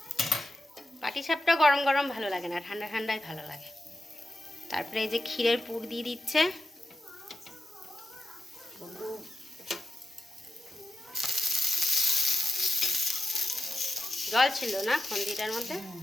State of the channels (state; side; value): normal; both; correlation 0.88